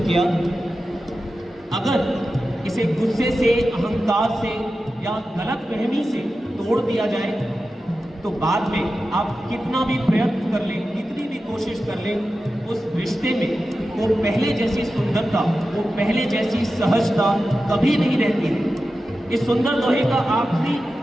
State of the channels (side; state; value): both; normal; correlation 0.92